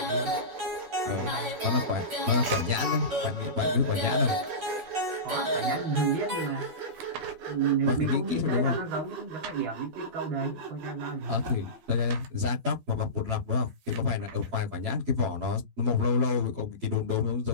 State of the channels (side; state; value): left; late; 12 ms